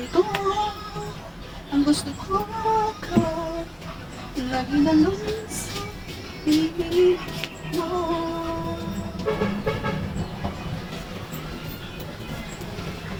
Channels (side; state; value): both; identical; correlation 1.00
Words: ang gusto ko ka lagi na lang sa piling mo.